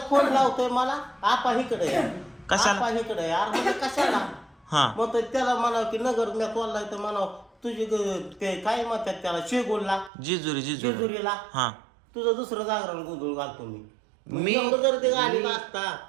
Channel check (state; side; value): drops out; left; at 10.1 s